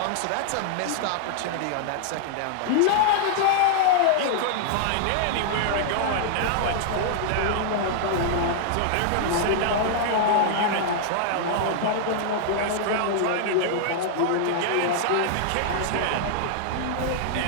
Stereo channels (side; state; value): both; different; correlation -0.01